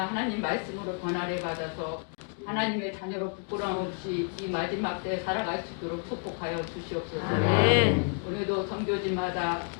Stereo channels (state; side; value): quieter; right; 39.0 dB